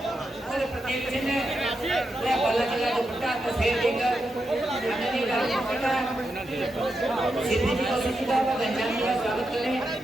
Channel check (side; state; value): both; normal; correlation 0.86